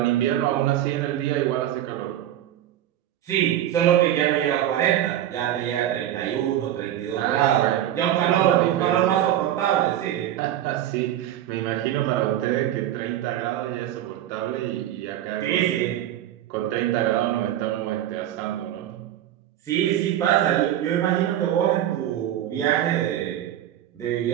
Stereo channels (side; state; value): left; quieter; 12.0 dB